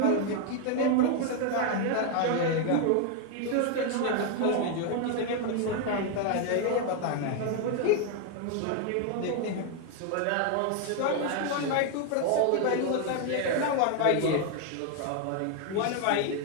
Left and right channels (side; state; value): both; different; correlation 0.01